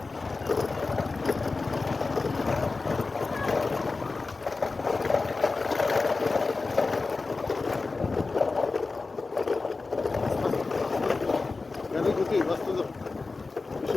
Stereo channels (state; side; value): quieter; right; 3.8 dB